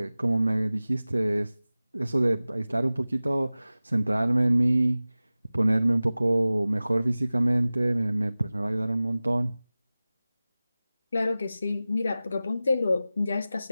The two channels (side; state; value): both; inverted; correlation -0.97